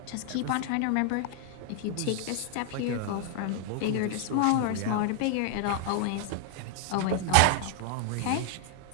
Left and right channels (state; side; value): different; both; correlation -0.01